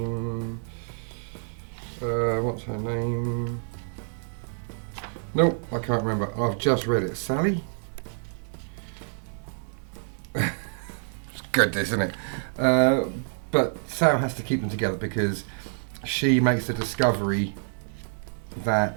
What's her name? Nope, I can't remember. I've just read it. Sally? It's good, this, isn't it? But Sam has to keep them together because she makes the discovery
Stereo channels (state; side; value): silent; left; digital silence